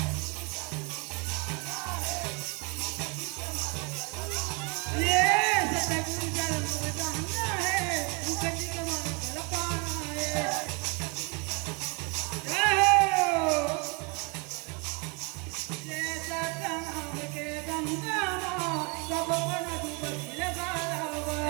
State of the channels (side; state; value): left; quieter; 31.1 dB